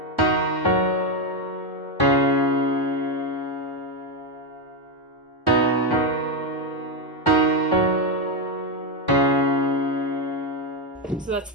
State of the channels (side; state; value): both; normal; correlation 0.07